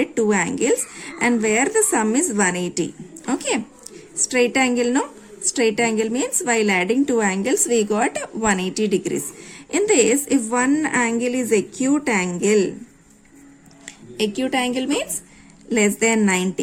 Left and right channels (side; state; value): both; identical; correlation 1.00